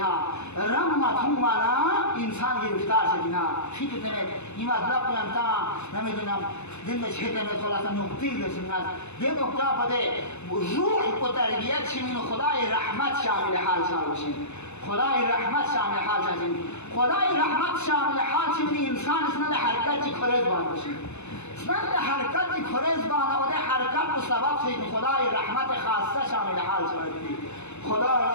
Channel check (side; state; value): right; late; 0.81 ms